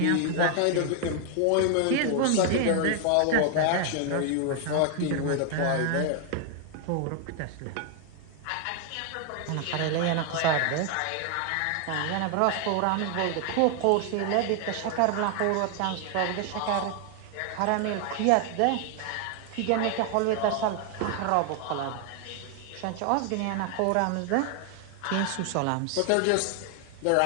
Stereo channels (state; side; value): different; both; correlation 0.00